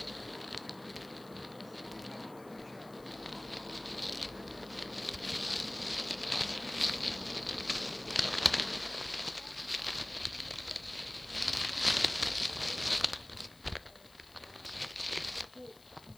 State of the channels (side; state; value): left; noise; hiss, 24 dB below the sound